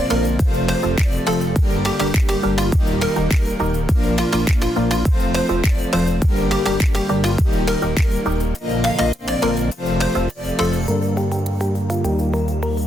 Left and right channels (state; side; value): normal; both; correlation 0.83